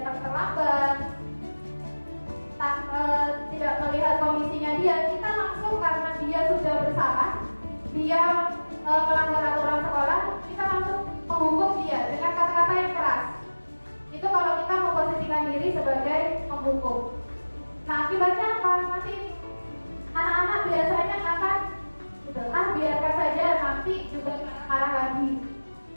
terlambat, tidak melihat kondisinya dia, kita langsung karena dia sudah bersalah, dia melanggar aturan sekolah, kita langsung menghukum dia dengan kata-kata yang keras. Itu kalau kita memposisikan diri sebagai penghukum. Nah, akibatnya apa? Nanti anak-anak biasanya akan biarkan saja, nanti juga marah lagi.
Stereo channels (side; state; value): both; inverted; correlation -1.00